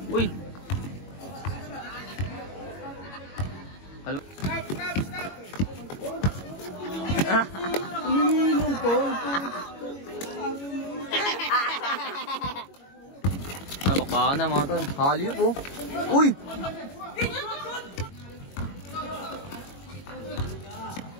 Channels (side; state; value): right; late; 21 ms